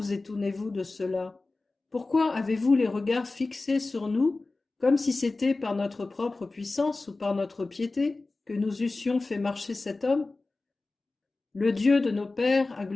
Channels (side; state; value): right; quieter; 3.4 dB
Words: étonnez-vous de cela? Pourquoi avez-vous les regards fixés sur nous, comme si c'était par notre propre puissance ou par notre piété que nous eussions fait marcher cet homme? Le Dieu de nos pères a